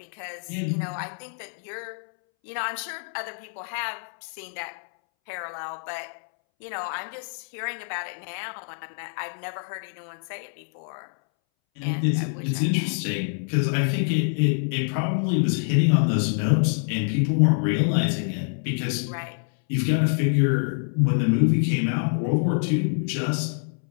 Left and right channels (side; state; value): right; silent; 61 dB below the other